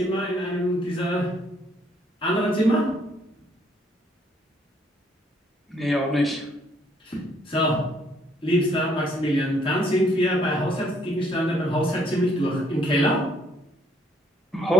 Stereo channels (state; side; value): normal; both; correlation 0.67